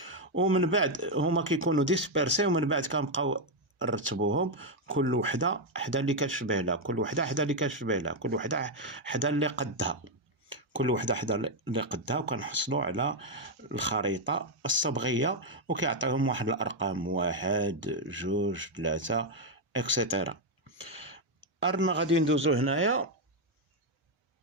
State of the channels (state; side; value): normal; both; correlation 0.02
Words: ومن بعد هما كيكونوا ديسبيرسي، ومن بعد كنبقاو نرتبوهم كل وحده حدا اللي كتشبه لها، كل وحده حدا اللي كتشبه لها، كل وحده حدا اللي قدها، كل وحده حدا اللي قدها، وكنحصلوا على الخريطه الصبغيه، وكيعطيهم واحد الارقام 1 2 3 اكسيتيرا. أرنا غادي ندوزو